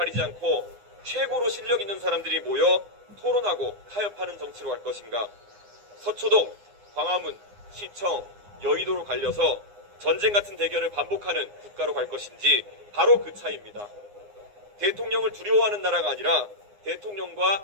않고 최고로 실력 있는 사람들이 모여 토론하고 타협하는 정치로 갈 것인가? 서초동, 광화문, 시청, 여의도로 갈려서 전쟁 같은 대결을 반복하는 국가로 갈 것인지 바로 그 차이입니다. 대통령을 두려워하는 나라가 아니라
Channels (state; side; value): late; left; 9.7 ms